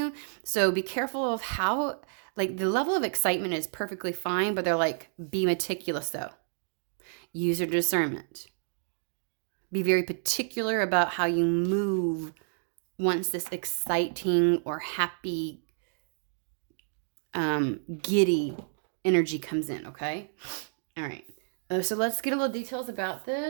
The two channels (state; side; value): silent; left; digital silence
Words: So be careful of how, like, the level of excitement is perfectly fine, but they're like, be meticulous though. Use your discernment. Be very particular about how you move once this exciting or happy, giddy energy comes in, okay? All right. So let's get a little details about